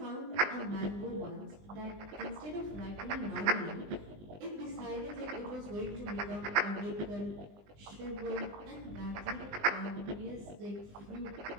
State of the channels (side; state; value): left; late; 20 ms